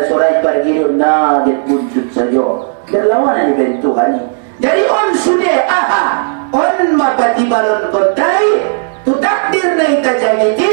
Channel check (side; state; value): left; silent; digital silence